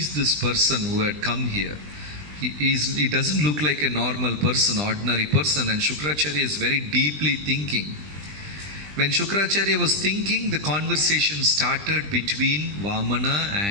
this person who had come here? He doesn't look like a normal person, ordinary person. And Shukracharya is very deeply thinking. When Shukracharya was thinking, the conversation started between Vamana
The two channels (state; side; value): late; left; 20 ms